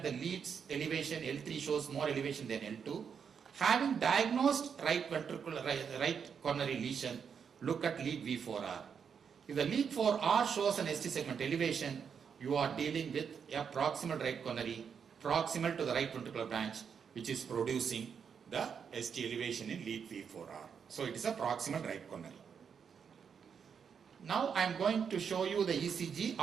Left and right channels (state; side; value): quieter; left; 6.9 dB